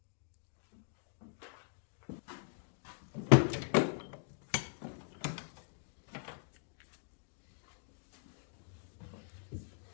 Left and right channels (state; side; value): silent; right; digital silence